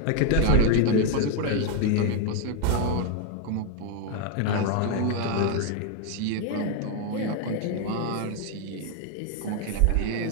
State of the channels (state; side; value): different; both; correlation 0.01